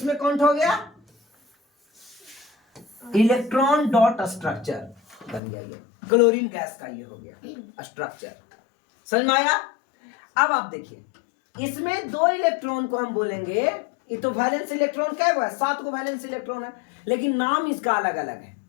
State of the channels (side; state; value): right; drops out; at 5.4 s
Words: काउंट हो गया, इलेक्ट्रॉन डॉट स्ट्रक्चर बन गया। ये क्लोरीन गैस का ये हो गया स्ट्रक्चर, समझ में आया। अब आप देखिए इसमें 2 इलेक्ट्रॉन को हम बोलेंगे, ये तो वैलेंस इलेक्ट्रॉन क्या है, 7 को वैलेंस इलेक्ट्रॉन है, लेकिन नाम इसका अलग अलग है।